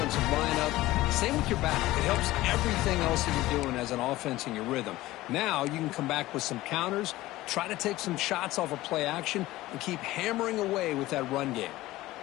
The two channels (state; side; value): quieter; right; 17.2 dB